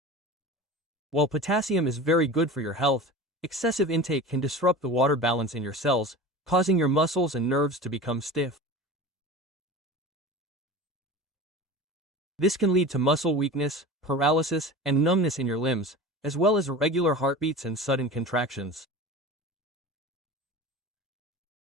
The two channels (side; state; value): both; normal; correlation 0.33